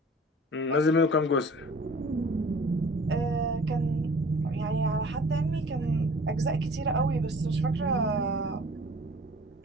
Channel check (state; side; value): normal; both; correlation 0.48